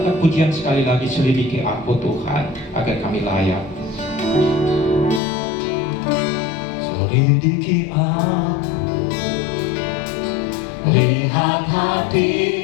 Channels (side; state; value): right; drops out; at 5.2 s